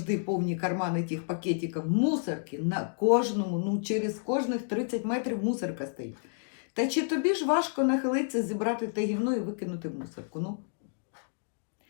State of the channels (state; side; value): silent; right; digital silence